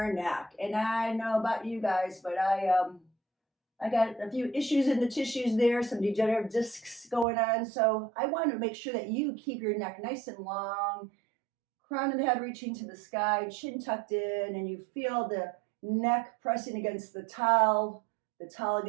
neck. And I know about you guys, but I got a few issues in the tissues there, some degenerative discs going on, so I want to make sure that you keep your neck nice and long, crown of the head reaching to the sky, chin tucked in, and you feel the neck pressing against the towel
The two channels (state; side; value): drops out; left; at 7.2 s